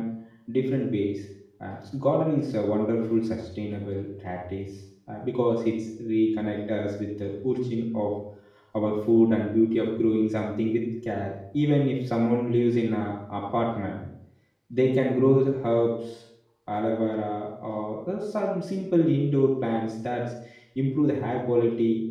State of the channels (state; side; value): identical; both; correlation 1.00